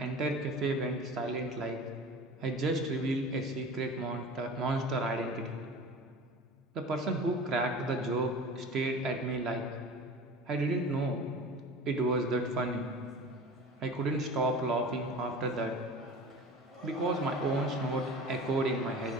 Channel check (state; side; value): normal; both; correlation 0.38